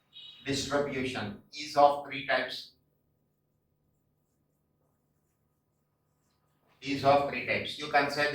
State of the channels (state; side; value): identical; both; correlation 1.00